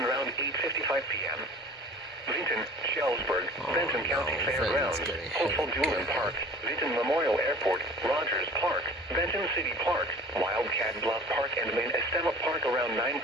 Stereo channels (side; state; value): both; normal; correlation 0.44